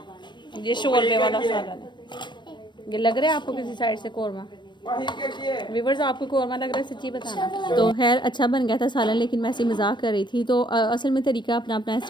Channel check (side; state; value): right; late; 0.22 ms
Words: ये शोरबे वाला सालन है। ये लग रहा है आपको किसी साइड से कोरमा? व्यूअर्स आपको कोरमा लग रहा है, सच्ची बताना। तो खैर अच्छा बन गया था सालन, लेकिन मैं ऐसे मजाक कर रही थी। तो असल में तरीका अपना अपना,